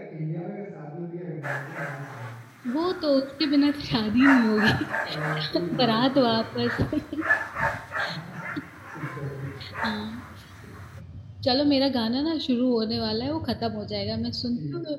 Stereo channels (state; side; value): identical; both; correlation 1.00